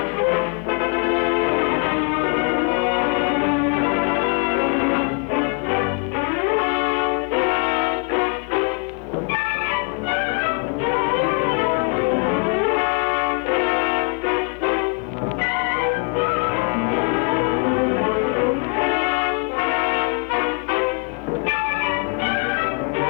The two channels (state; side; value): quieter; right; 35.6 dB